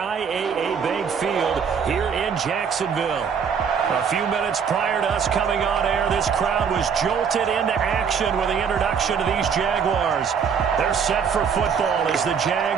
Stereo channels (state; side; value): quieter; left; 6.8 dB